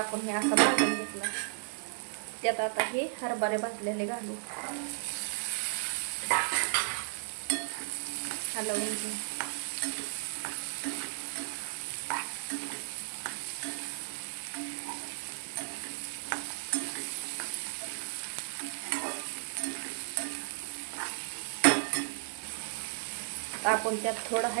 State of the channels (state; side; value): silent; left; digital silence